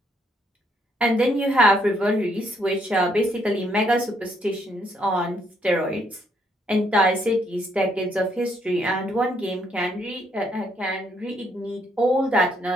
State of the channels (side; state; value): both; normal; correlation 0.71